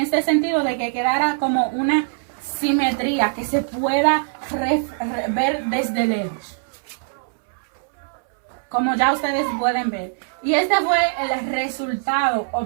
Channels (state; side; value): silent; left; 61 dB below the other